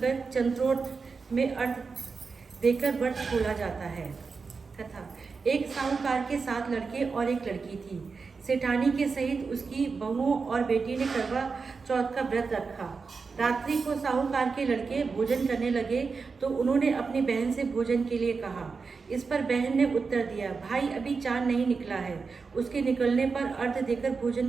चंद्रोत में अर्थ देकर व्रत खोला जाता है। तथा एक साहूकार के 7 लड़के और एक लड़की थी। सेठानी के सहित उसकी बहुओं और बेटी ने करवा चौथ का व्रत रखा। रात्रि को साहूकार के लड़के भोजन करने लगे तो उन्होंने अपनी बहन से भोजन के लिए कहा। इस पर बहन ने उत्तर दिया, भाई अभी चांद नहीं निकला है, उसके निकलने पर अर्घ देकर भोजन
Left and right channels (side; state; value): left; quieter; 4.8 dB